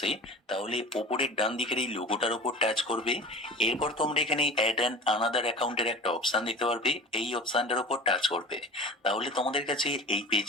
তাহলে ওপরের ডান দিকের এই লোগোটার উপর টাচ করবে। এরপর তোমরা এখানে অ্যাড অ্যান আনাদার অ্যাকাউন্টের একটা অপশন দেখতে পারবে, এই অপশনটার উপর টাচ করবে। তাহলে তোমাদের কাছে এই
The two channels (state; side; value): normal; both; correlation 0.37